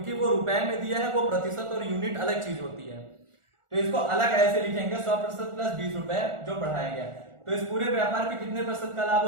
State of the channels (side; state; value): left; late; 1.4 ms